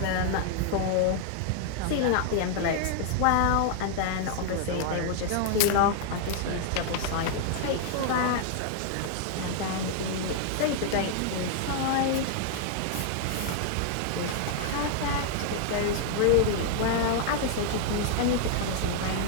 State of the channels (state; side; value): different; both; correlation 0.00